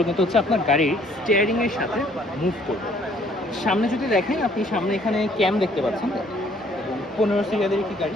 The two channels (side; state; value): both; normal; correlation 0.61